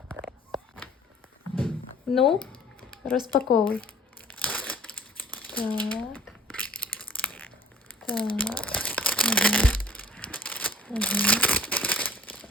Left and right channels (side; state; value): both; normal; correlation 0.52